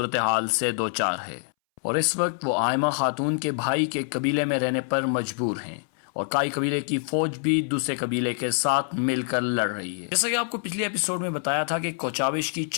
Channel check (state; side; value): silent; right; 61 dB below the other